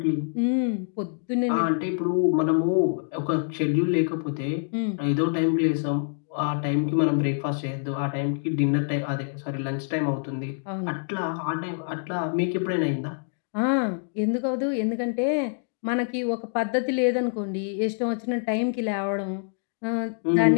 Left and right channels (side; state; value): right; silent; digital silence